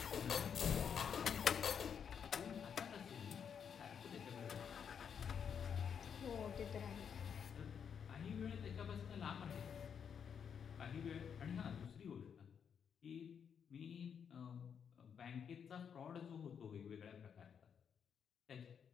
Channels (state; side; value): quieter; right; 7.4 dB